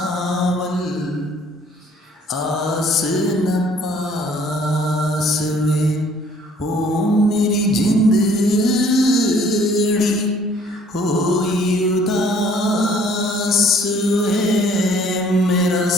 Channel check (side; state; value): both; normal; correlation 0.58